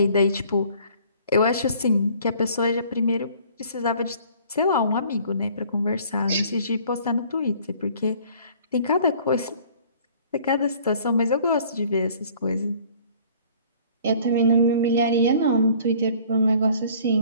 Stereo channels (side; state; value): both; inverted; correlation -0.54